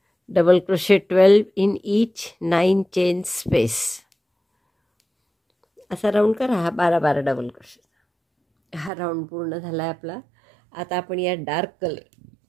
Double crochet 12 in each 9 chain space. असा राऊंड करा हा 12 डबल क्रोशे. हा राऊंड पूर्ण झाला आहे आपला. आता आपण या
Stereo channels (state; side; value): drops out; left; at 8.9 s